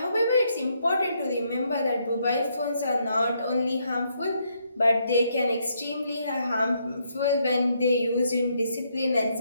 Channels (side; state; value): both; inverted; correlation -0.75